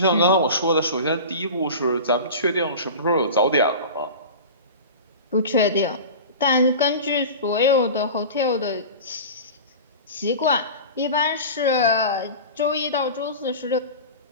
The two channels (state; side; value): inverted; both; correlation -0.33